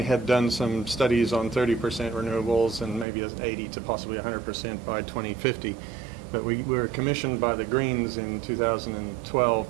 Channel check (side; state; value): left; drops out; at 3.1 s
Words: had done some studies on 30% renewables and maybe as 80 to possibly 100% by 2050. But we were commissioned by the Greens in 2012,